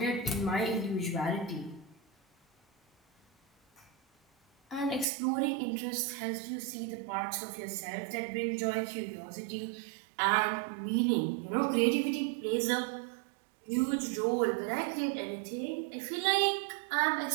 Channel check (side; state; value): left; drops out; at 5.1 s